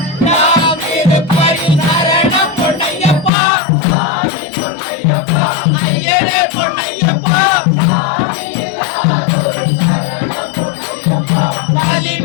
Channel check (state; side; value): drops out; right; at 3.3 s